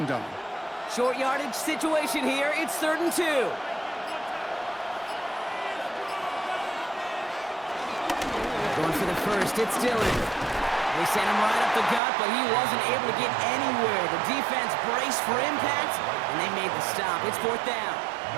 on. Short yardage situation here. It's 3rd and 2. Going for the first, it's Dillon. They sent him right up the gut, but he wasn't able to get anywhere. The defense braced for impact, and they made the stop. It's 4th down.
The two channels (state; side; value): drops out; left; at 12.0 s